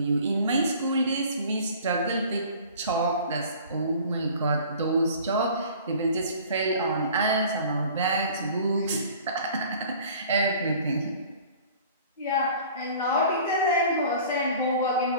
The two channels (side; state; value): both; inverted; correlation -0.47